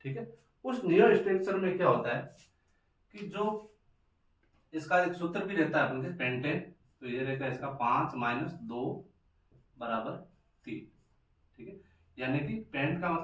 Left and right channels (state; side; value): identical; both; correlation 1.00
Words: ठीक है, उस नियो स्ट्रक्चर में क्या होता है कि जो इसका एक सूत्र भी रहता है अपन के पेंटेन, तो ये रहता है इसका 5 - 2 = 3, ठीक है। यानी कि पेंट का